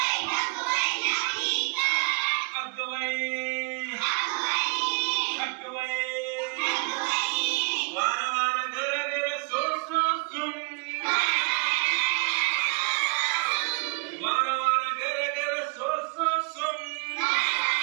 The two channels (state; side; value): quieter; left; 32.2 dB